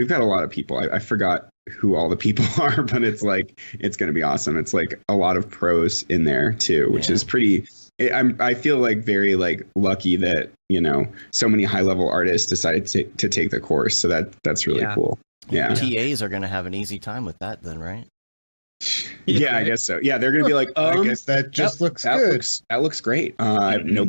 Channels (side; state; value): both; inverted; correlation -1.00